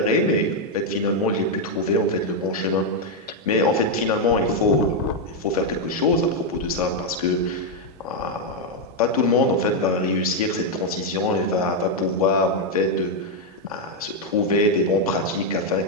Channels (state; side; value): normal; both; correlation 0.01